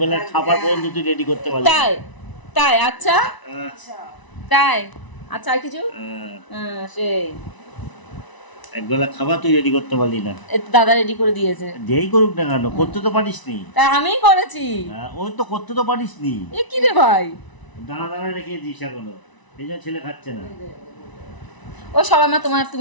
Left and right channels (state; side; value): late; right; 1.0 ms